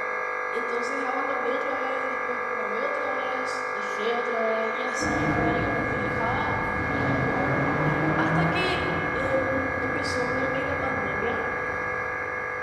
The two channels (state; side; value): identical; both; correlation 1.00